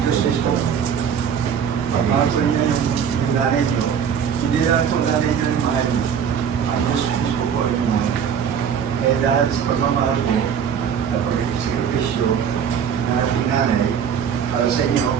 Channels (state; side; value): quieter; left; 7.7 dB